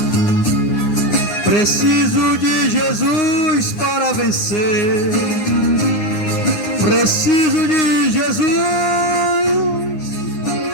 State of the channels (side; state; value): right; late; 9.7 ms